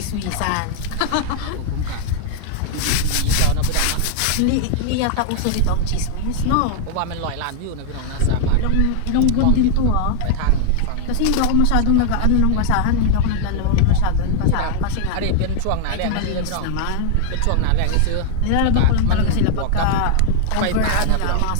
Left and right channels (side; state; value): both; different; correlation 0.00